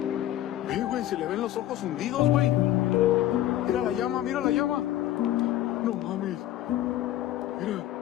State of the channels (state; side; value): quieter; right; 13.5 dB